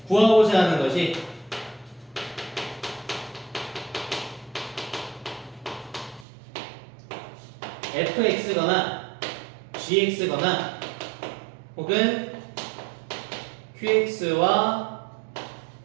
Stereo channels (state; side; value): drops out; left; at 6.2 s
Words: 구하고자 하는 것이 fx거나 gx거나 혹은 qx와